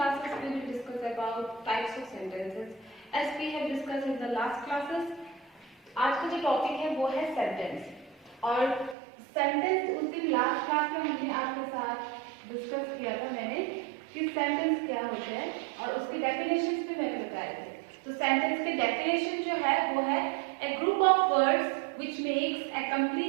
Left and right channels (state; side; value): drops out; left; at 9.0 s